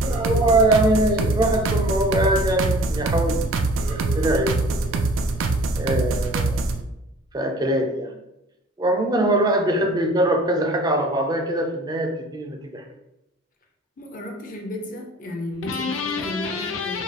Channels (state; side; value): normal; both; correlation 0.48